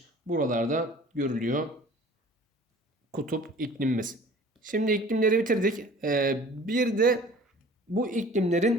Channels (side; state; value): both; normal; correlation 0.47